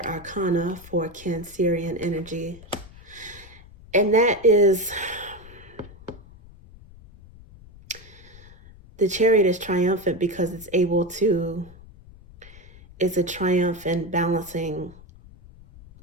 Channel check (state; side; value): noise; left; rumble, 21 dB below the sound